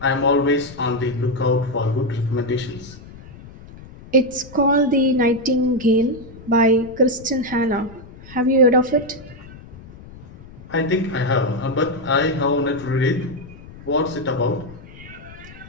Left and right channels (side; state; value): left; noise; rumble, 18 dB below the sound